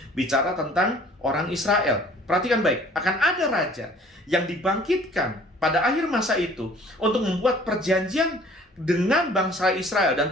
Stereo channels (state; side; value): normal; both; correlation 0.52